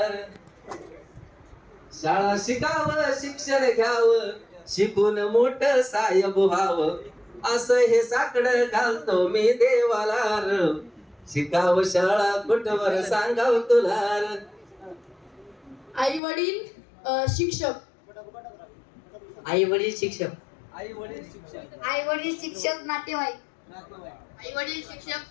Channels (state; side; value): drops out; right; at 16.2 s